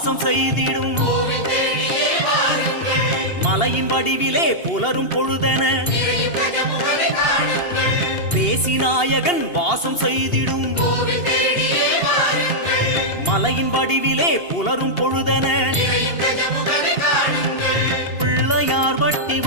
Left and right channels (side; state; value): right; late; 2.8 ms